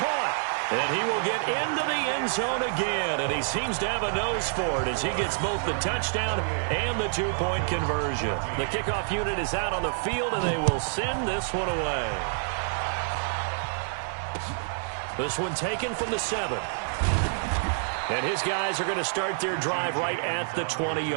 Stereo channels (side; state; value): left; silent; digital silence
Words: And he will get into the end zone again, and he seems to have a nose for it as he gets both the touchdown and the two-point conversion. The kickoff unit is out on the field, and they will send this one away. This one taken from the 7. And his guys are going to start their drive right at the